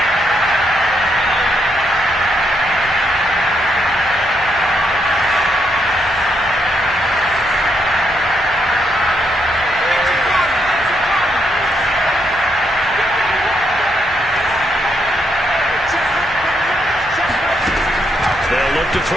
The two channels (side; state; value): both; normal; correlation 0.77